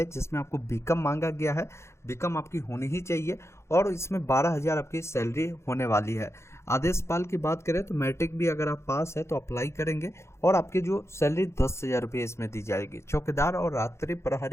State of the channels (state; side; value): late; right; 0.13 ms